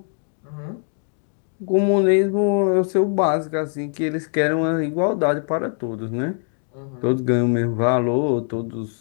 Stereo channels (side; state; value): right; silent; 56 dB below the other